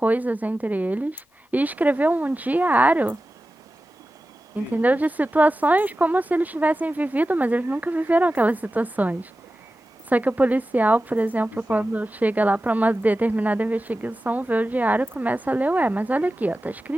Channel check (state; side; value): normal; both; correlation 0.94